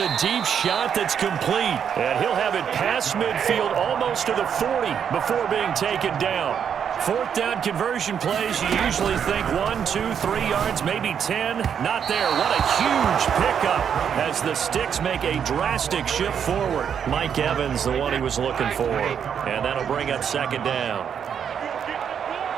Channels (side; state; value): left; quieter; 7.9 dB